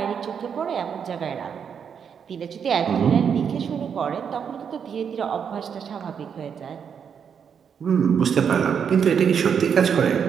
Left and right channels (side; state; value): left; quieter; 7.3 dB